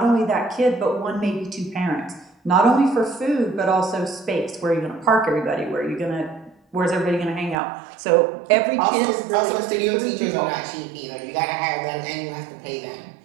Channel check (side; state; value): left; drops out; at 7.6 s